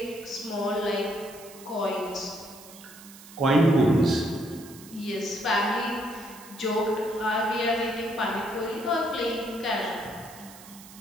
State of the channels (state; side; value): noise; right; hiss, 19 dB below the sound